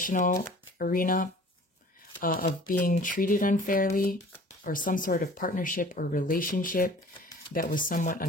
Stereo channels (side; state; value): both; normal; correlation 0.48